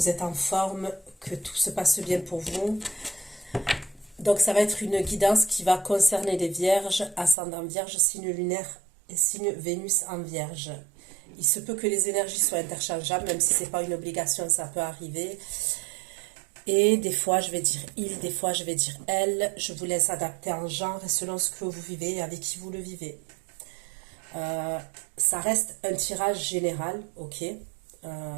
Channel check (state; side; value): drops out; left; at 7.4 s